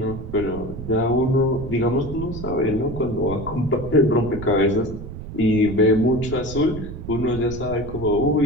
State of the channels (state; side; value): noise; right; rumble, 10 dB below the sound